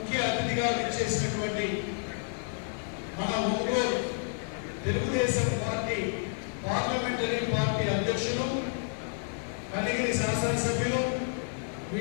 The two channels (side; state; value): right; silent; 58 dB below the other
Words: అతిథిగా విచ్చేసినటువంటి మన Ongole Telugu Desam party parliamentary party అధ్యక్షులు కనిగిరి శాసనసభ్యులు